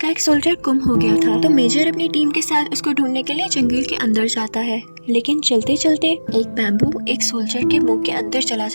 एक सोल्जर गुम हो गया था तो मेजर अपनी टीम के साथ उसको ढूंढने के लिए जंगल के अंदर जाता है, लेकिन चलते चलते एक बैम्बू एक सोल्जर के मुंह के अंदर चला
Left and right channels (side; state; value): both; inverted; correlation -1.00